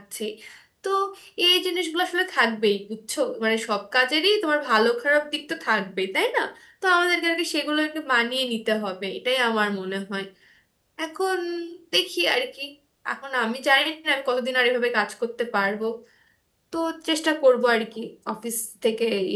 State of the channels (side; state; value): both; identical; correlation 1.00